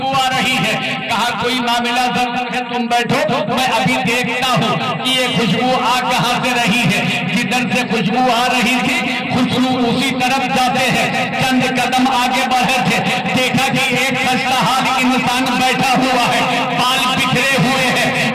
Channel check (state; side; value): identical; both; correlation 1.00